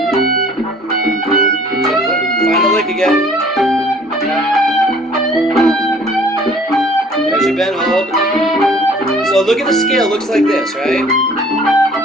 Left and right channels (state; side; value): normal; both; correlation 0.53